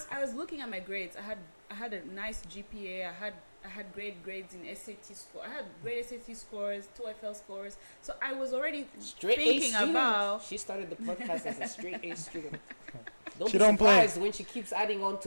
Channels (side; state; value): both; inverted; correlation -1.00